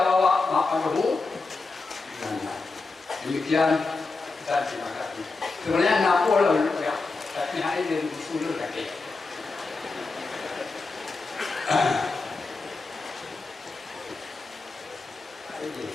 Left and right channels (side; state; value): right; quieter; 3.9 dB